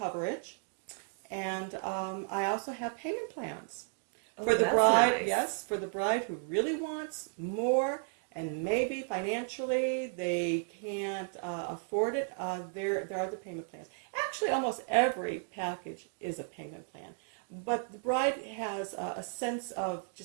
and I also have payment plans for the bride. Nice. Yes, for the bride who really wants more, and maybe financially they can't afford it. There are the payment plans. Actually, almost every package is a payment plan, but the bride has a sense of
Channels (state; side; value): silent; left; 55 dB below the other